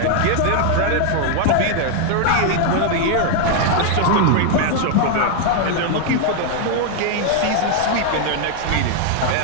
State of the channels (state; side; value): different; both; correlation 0.00